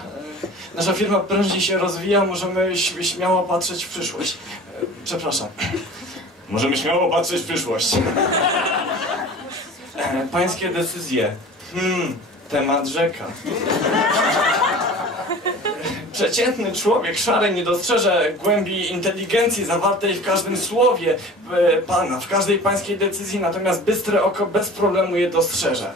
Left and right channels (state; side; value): normal; both; correlation 0.40